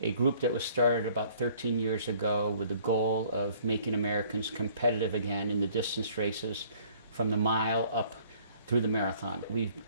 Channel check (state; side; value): inverted; both; correlation -0.58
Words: a group that was started about 13 years ago with the goal of making Americans competitive again in the distance races from the mile up through the marathon. We've